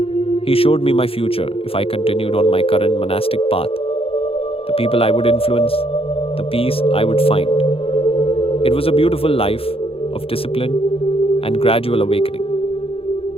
He showed me my future if I continued on my current monastic path, the people I would influence, the peace I would find. It was a beautiful life of discipline and gradual awakening.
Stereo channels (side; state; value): right; late; 0.27 ms